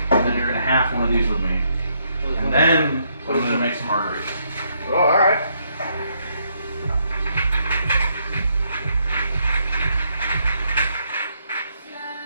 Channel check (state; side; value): inverted; both; correlation -0.74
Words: and then you're gonna have one of these with me, and then I'm gonna make some margaritas. Oh, alright.